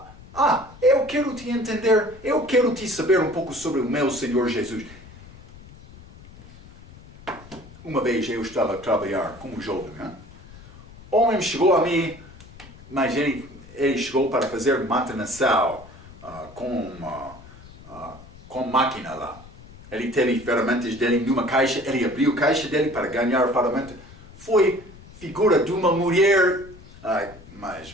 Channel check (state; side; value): noise; left; rumble, 20 dB below the sound